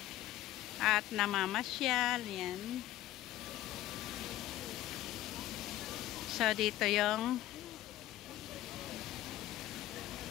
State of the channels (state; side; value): quieter; right; 14.5 dB